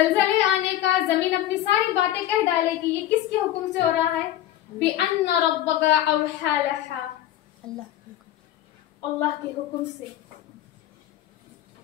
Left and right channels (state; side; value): quieter; right; 13.0 dB